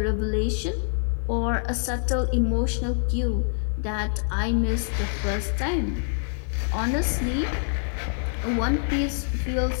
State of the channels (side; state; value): right; silent; digital silence